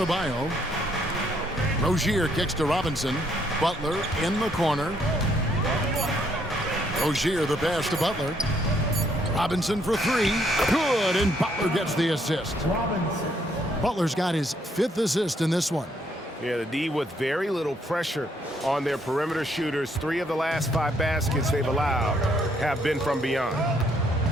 Rozier kicks to Robinson. Butler in the corner. Rozier the pass to Butler. Robinson for three. Good, and Butler gets the assist. Butler's got his 5th assist in this one. Yeah, the D with very little pressure on their perimeter shooters. 3 of the last 5 baskets they've allowed have been from beyond.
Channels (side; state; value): both; normal; correlation 0.70